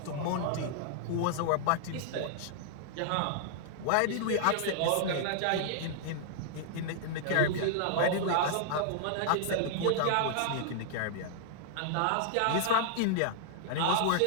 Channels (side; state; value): both; different; correlation -0.01